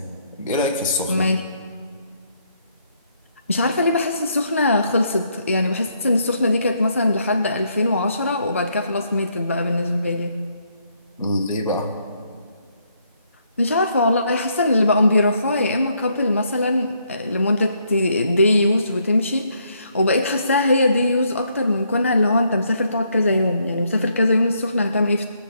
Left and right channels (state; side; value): inverted; both; correlation -0.72